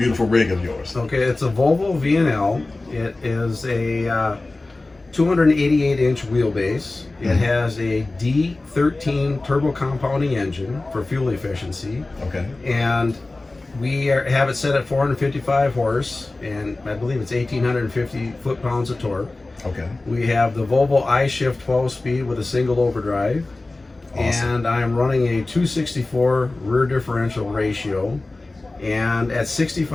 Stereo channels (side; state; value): right; quieter; 3.1 dB